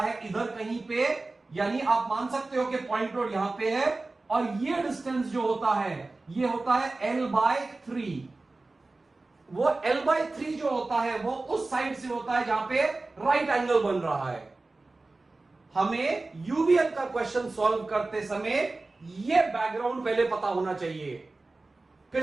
है इधर कहीं पे, यानी आप मान सकते हो कि पॉइंट लोड यहां पे है, और ये डिस्टेंस जो होता है ये होता है L/3। वो L/3 जो होता है वो उस साइड से होता है जहां पे राइट एंगल बन रहा है। हमें यूवीएल का क्वेश्चन सॉल्व करते समय ये बैकग्राउंड पहले पता होना चाहिए।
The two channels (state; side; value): quieter; left; 3.3 dB